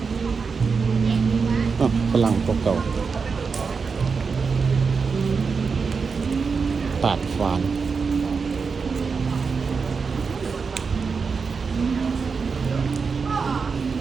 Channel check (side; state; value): left; quieter; 5.2 dB